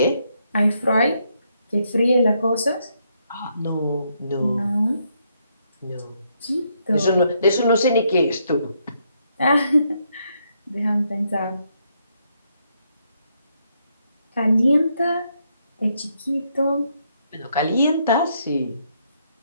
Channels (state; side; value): inverted; both; correlation -0.76